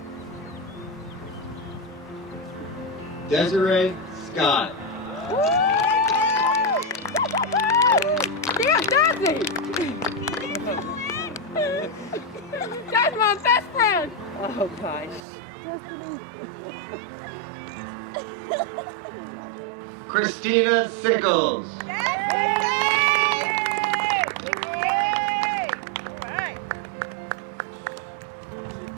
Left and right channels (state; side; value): drops out; left; at 15.2 s